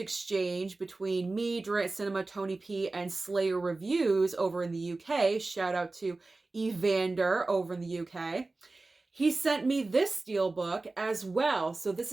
between me, Durant Cinema, Tony P, and Slayer Reviews over in the UK, shout out to Evander over in the UK, he sent me this steelbook as well. So this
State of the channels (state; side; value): quieter; left; 3.3 dB